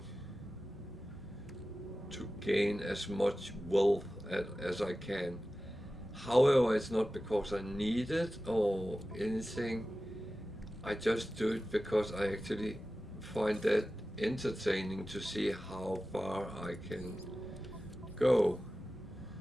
to gain as much wealth as I can. However, it's not because I need it or anything. I just do it because I actually find that entertaining to see how far I can go.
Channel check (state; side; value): normal; both; correlation 0.95